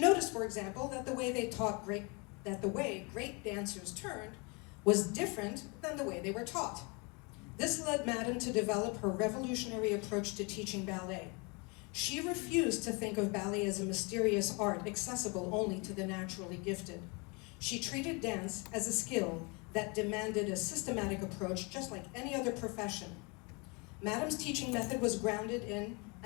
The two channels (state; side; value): quieter; right; 30.5 dB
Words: noticed, for example, that the way great dancers turned was different than the way they were taught. This led Madam to develop her revolutionary approach to teaching ballet. She refused to think of ballet as a mysterious art accessible only to the naturally gifted. She treated dance as a skill that demanded a systematic approach just like any other profession. Madam's teaching method was grounded in